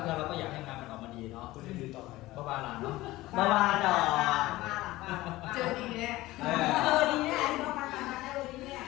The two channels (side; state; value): right; quieter; 18.0 dB